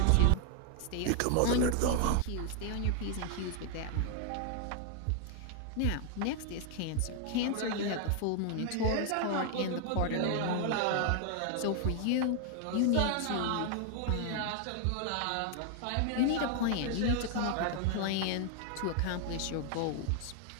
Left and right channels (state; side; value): different; both; correlation 0.00